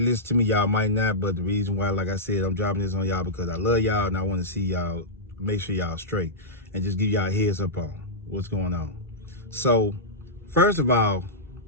listen to me, y'all might not, but the reason why, like I said, I'm dropping this on y'all because I love y'all and I want to see y'all, make sure y'all straight and just give y'all a heads up on what's going on. So, first of all,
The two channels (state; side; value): normal; both; correlation -0.12